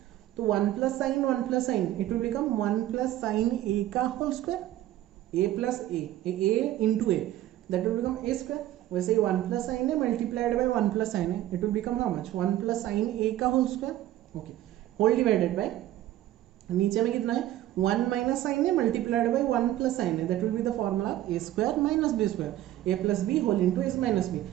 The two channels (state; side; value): quieter; left; 13.8 dB